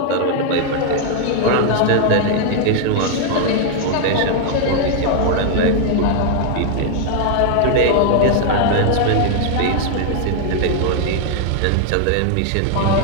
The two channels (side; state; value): both; different; correlation 0.00